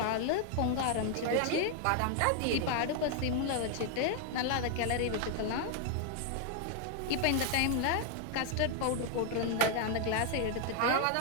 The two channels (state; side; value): different; both; correlation 0.00